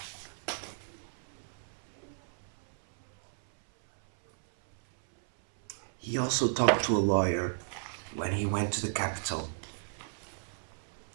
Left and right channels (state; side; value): silent; left; 56 dB below the other